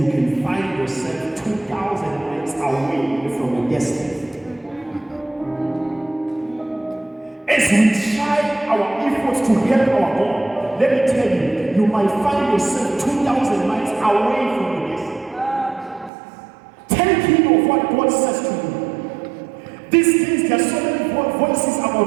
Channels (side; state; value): left; drops out; at 16.1 s